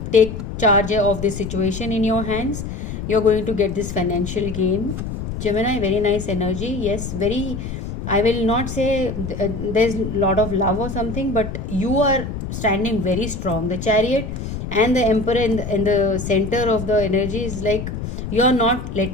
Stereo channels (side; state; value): left; noise; rumble, 6 dB below the sound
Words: take charge of this situation in your hands, you're going to get this financial gain. Gemini, very nice energy. Yes, very, I will not say there's a lot of love or something, but you are standing very strong. The chariot and the emperor in the center of the energy is like you are not